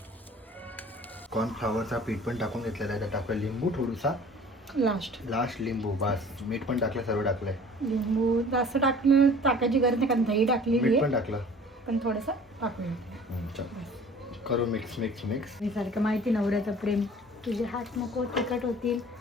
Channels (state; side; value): normal; both; correlation 0.47